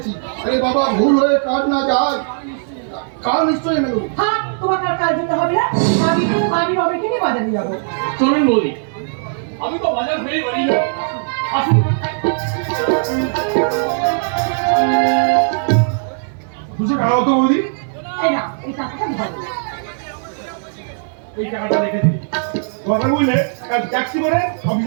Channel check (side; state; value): left; silent; 59 dB below the other